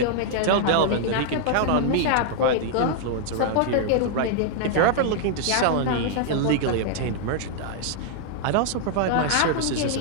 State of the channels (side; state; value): both; different; correlation -0.01